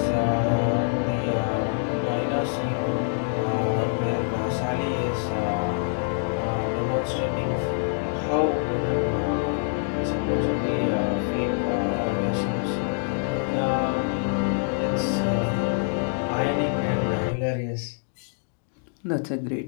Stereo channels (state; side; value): silent; right; digital silence